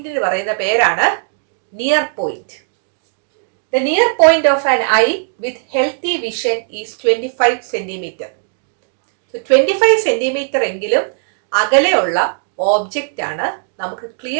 പറയുന്ന പേരാണ് near point. The near point of an eye with healthy vision is 25 centimeter. So 25 centimeter എങ്കിലും അകലെയുള്ള ഓബ്ജക്റ്റ് ആണ് നമുക്ക്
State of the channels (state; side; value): silent; left; digital silence